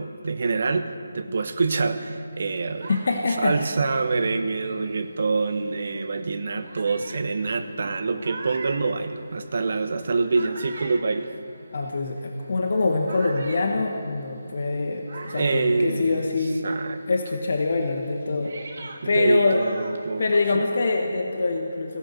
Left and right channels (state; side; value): inverted; both; correlation -0.88